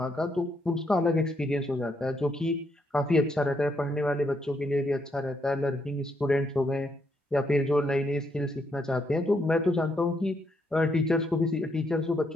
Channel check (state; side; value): normal; both; correlation 0.76